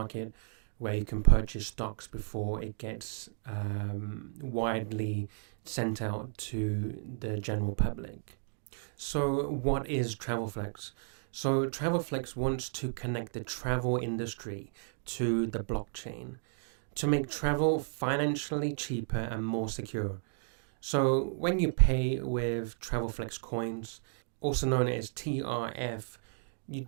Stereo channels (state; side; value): silent; left; digital silence